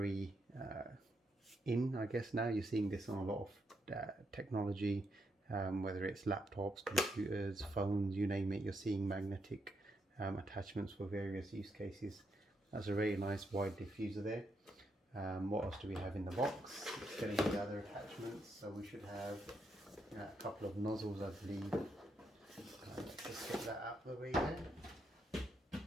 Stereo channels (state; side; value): normal; both; correlation 0.79